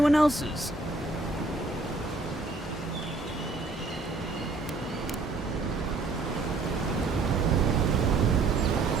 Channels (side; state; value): left; quieter; 3.6 dB